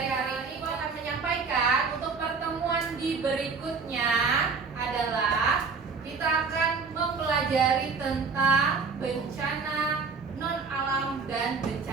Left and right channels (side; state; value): left; quieter; 5.0 dB